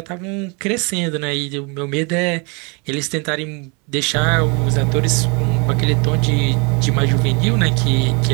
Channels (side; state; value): left; quieter; 31.9 dB